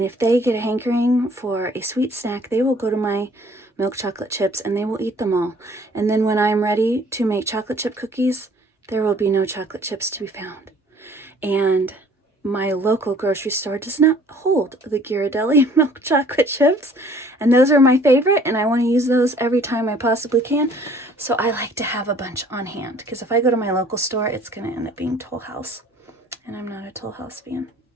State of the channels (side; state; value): both; normal; correlation 0.55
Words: if they get a hankering for a sweet snack, they will go to my milk chocolate chips and they will eat them all. And then when I'm ready to make chocolate chip cookies, there will be no chocolate chips to be found. And my local grocery store does not hold the Ghirardelli milk chocolate chips, and those are my favorite, and I want to use those every time I possibly can. So I like to have a bunch on hand, because if I go to my local store, it's going to end up being Toll House, and I'm not a Toll House fan.